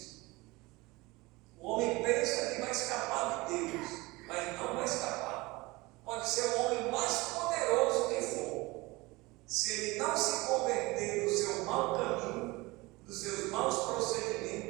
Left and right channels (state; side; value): quieter; left; 22.4 dB